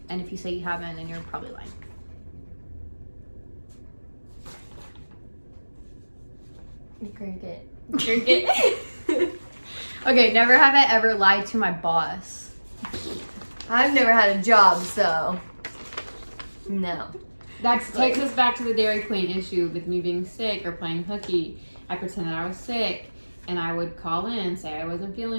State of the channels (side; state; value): both; inverted; correlation -1.00